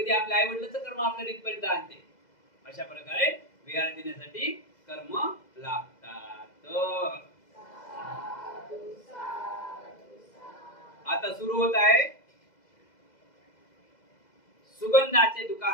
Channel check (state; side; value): late; right; 2.0 ms